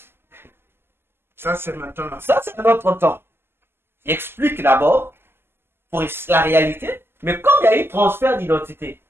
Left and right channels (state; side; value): late; left; 0.11 ms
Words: Ça, c'est maintenant. Ça, c'est notre temps. J'explique d'abord pour la réalité, mais comme il y a eu transfert d'identité,